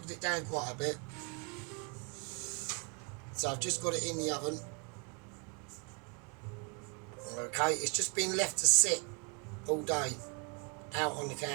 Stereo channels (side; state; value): left; quieter; 35.2 dB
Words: it down quite a bit. So I've just got it in the oven. Okay, it's just been left to sit all day out on the